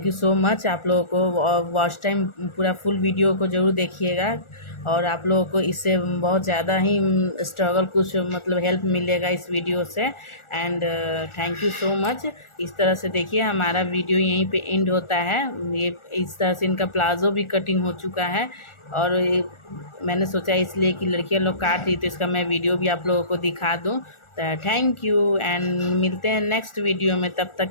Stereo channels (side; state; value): right; late; 1.4 ms